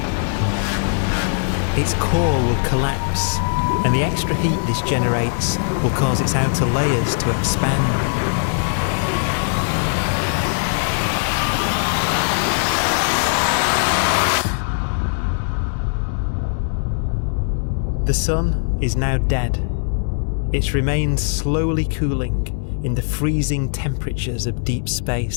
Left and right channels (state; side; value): silent; right; digital silence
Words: Its core will collapse, and the extra heat this generates will cause its outer layers to expand. The sun is now dead. It remains slowly cooling in the freezing temperatures of deep